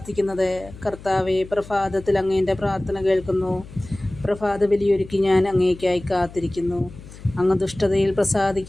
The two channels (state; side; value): noise; left; hum, 17 dB below the sound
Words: കർത്താവേ, പ്രഭാതത്തിൽ അങ്ങേൻ്റെ പ്രാർത്ഥന കേൾക്കുന്നു. പ്രഭാത ബലിയൊരുക്കി ഞാൻ അങ്ങേയ്ക്കായി കാത്തിരിക്കുന്നു. അങ്ങ് ദുഷ്ടതയിൽ